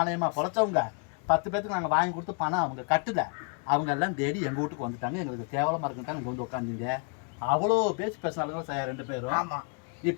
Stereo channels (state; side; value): quieter; right; 37.2 dB